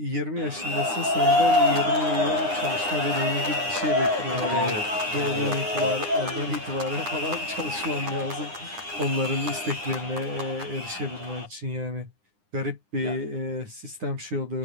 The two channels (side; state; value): left; late; 9.8 ms